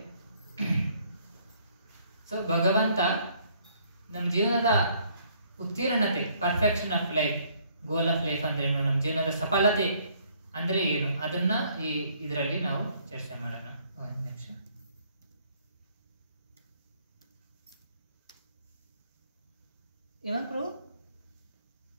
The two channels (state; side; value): inverted; both; correlation -0.64